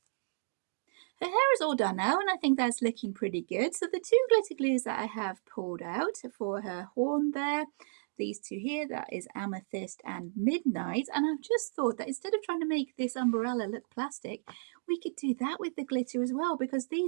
Her hair is all done now, and I think that's looking pretty good. So the two glitter glues that I have pulled out for her horn there, these two here, that is Amethyst and Midnight. And I've just thought that instead of trying to make this umbrella look plastic, we could do that with the glitter as well, because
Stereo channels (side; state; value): left; silent; digital silence